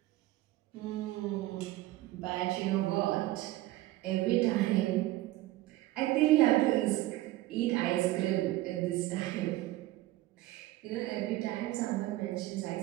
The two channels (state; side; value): quieter; left; 16.9 dB